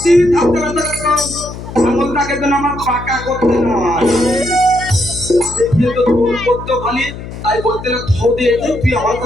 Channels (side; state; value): left; noise; hum, 11 dB below the sound